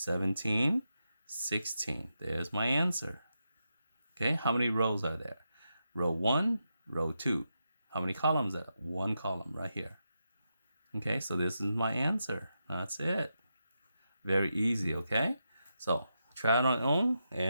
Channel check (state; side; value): inverted; both; correlation -0.86